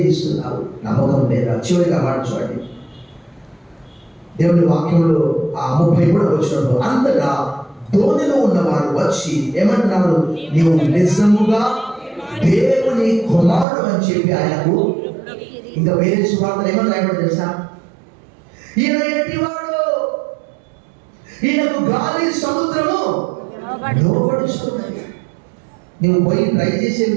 నమ్మకం లేదా? చివరిగా మాట చూడండి, దేవుని వాక్యంలో ఆ 33వ వచనంలో, అంతటా ధోనిలో ఉన్నవారు వచ్చి ఏమంటున్నారు, నీవు నిజముగా దేవుని కుమారుడు అని చెప్పి ఆయనకు, ఇంకా వేరే సువార్తలు ఏమని రాయబడి తెలుసా, ఈయన ఎట్టివాడు, ఈయనకు గాలి సముద్రము లోబడిస్తున్నది. నువ్వు పోయి ట్రై చేసేవి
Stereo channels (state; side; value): drops out; left; at 13.7 s